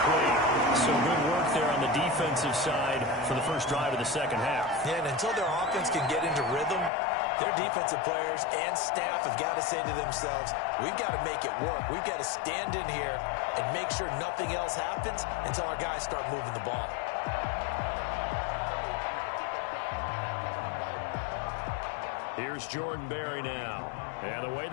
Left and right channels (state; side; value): drops out; right; at 6.9 s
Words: So good work there on the defensive side for the first drive of the second half. Yeah, and until their offense can get into rhythm, their defensive players and staff have got to say to themselves, we've got to make it work. We've got to stand in here and make sure nothing else happens until our guys start moving the ball. Here's Jordan Berry now. And the way